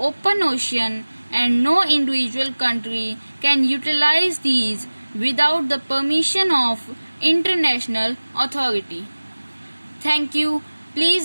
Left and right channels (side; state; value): both; inverted; correlation -1.00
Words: ocean and no individual country can utilize these without the permission of international authority. Thank you.